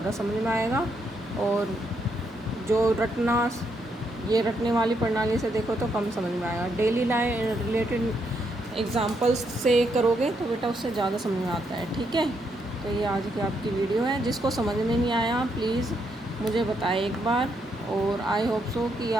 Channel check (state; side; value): normal; both; correlation 0.77